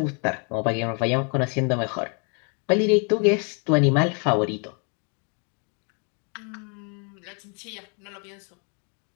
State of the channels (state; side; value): quieter; right; 38.0 dB